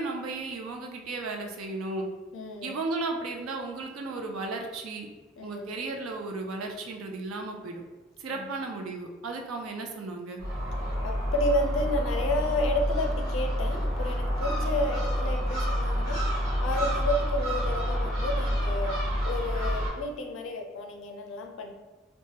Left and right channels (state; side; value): normal; both; correlation 0.55